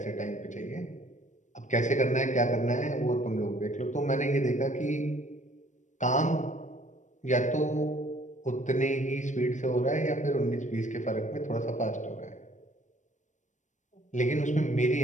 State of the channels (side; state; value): right; late; 0.35 ms